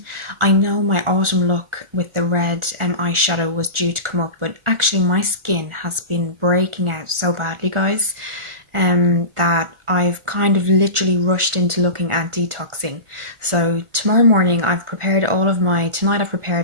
I know my autumn look with the red eyeshadow was due to come up, but actually my skin has been breaking out so badly, guys, that I've kind of literally rushed into looking at detoxing. So tomorrow morning I've prepared tonight I've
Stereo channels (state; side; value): late; left; 1.4 ms